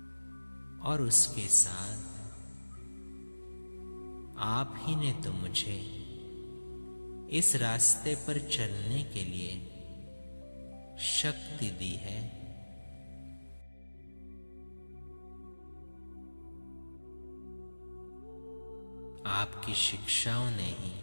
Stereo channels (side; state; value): both; inverted; correlation -1.00